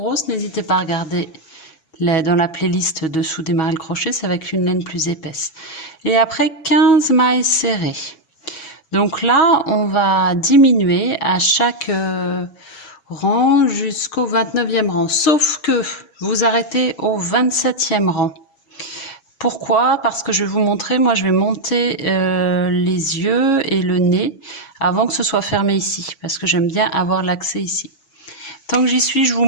n'hésitez pas à regarder dans la playlist dessous démarrer le crochet, c'est avec une laine plus épaisse. Et après 15 mailles serrées. Donc là, on va diminuer à chaque rang jusqu'au 29e rang. Sauf que vous arrêtez au 27e rang. Pourquoi? Parce que je vais vous montrer, moi je vais monter les yeux et le nez avant que ce soit fermé ici. Parce que j'aime bien avoir l'accès ici. Tant que j'y suis, je vous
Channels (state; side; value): late; right; 7.2 ms